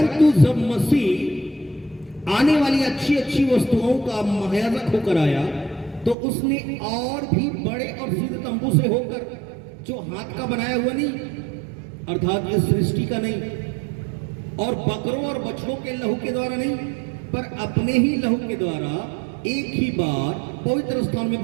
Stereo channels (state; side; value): drops out; left; at 6.2 s